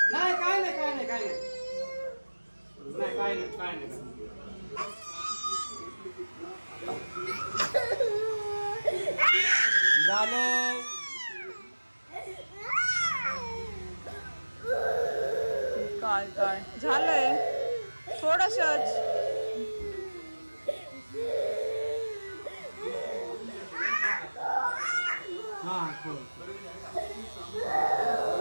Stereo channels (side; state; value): both; inverted; correlation -1.00